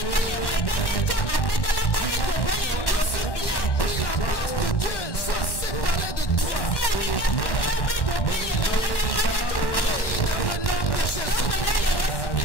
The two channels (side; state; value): right; late; 1.1 ms